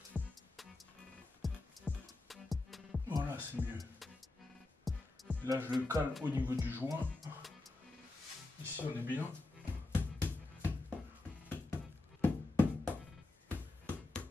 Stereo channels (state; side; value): quieter; right; 3.0 dB